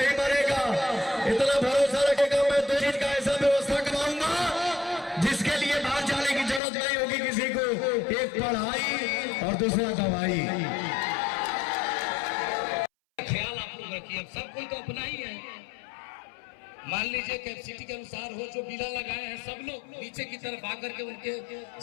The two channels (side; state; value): right; drops out; at 6.6 s